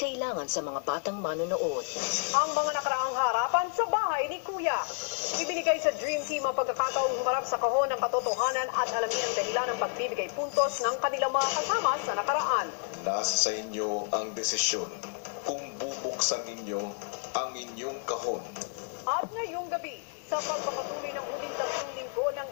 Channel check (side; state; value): right; quieter; 39.8 dB